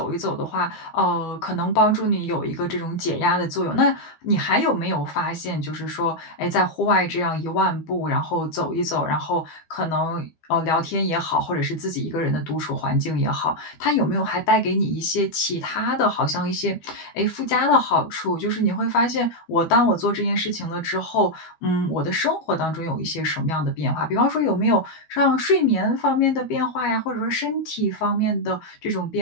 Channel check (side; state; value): right; late; 12 ms